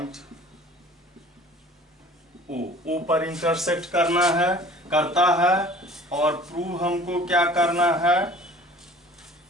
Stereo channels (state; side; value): normal; both; correlation 0.47